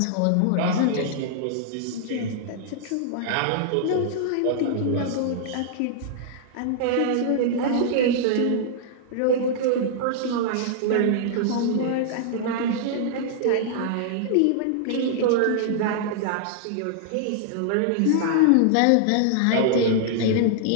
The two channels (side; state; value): both; different; correlation -0.01